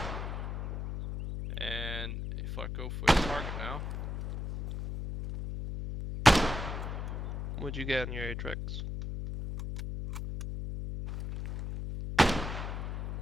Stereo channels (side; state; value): left; noise; hum, 4 dB below the sound